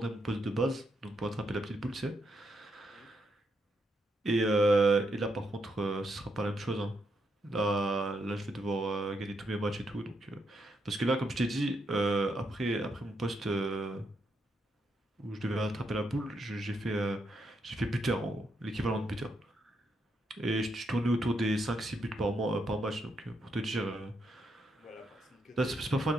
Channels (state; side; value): normal; both; correlation 0.79